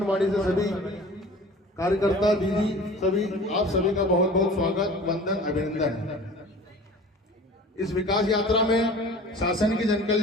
से सभी कार्यकर्ता दीदी सभी, आप सभी का बहुत बहुत स्वागत, वंदन, अभिनंदन। इस विकास यात्रा में शासन की जन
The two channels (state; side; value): normal; both; correlation 0.43